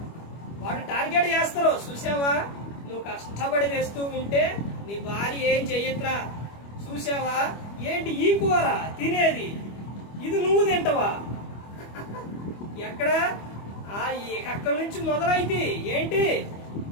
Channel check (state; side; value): late; right; 25 ms